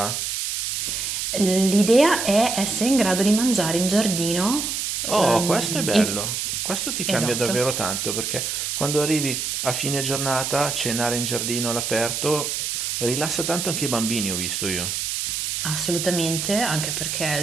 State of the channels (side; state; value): right; noise; hiss, 2 dB below the sound